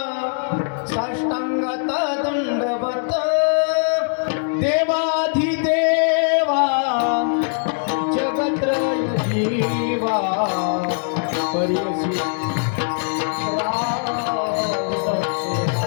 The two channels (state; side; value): silent; right; 65 dB below the other